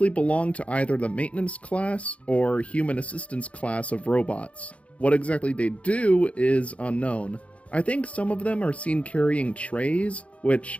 belong to either the maintenance class or human assistance class of robots. What exactly they do is unknown. I think some of them are seen carrying trays, which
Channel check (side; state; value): right; late; 0.064 ms